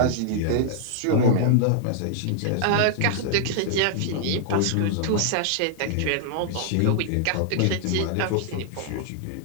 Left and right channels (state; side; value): different; both; correlation -0.01